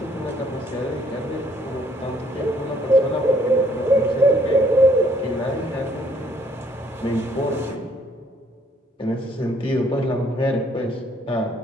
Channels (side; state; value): both; normal; correlation 0.65